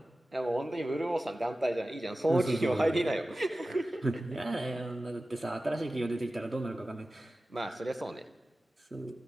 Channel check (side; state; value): both; normal; correlation 0.95